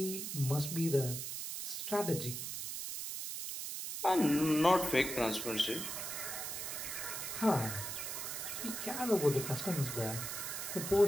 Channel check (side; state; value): right; noise; hiss, 5 dB below the sound